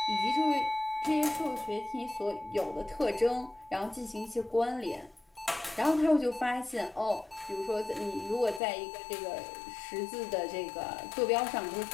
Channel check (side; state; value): right; drops out; at 8.6 s